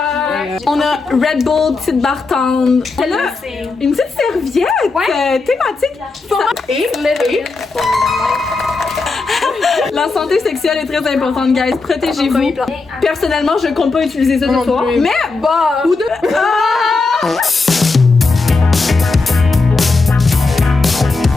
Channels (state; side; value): quieter; right; 3.9 dB